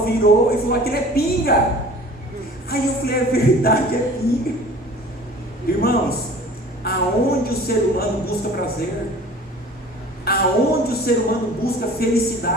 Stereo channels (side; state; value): both; normal; correlation 0.45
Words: virou e falou, aquilo é pinga. Aí eu falei, é verdade, é pinga. Irmãos, aonde o ser humano busca prazer, aonde o ser humano busca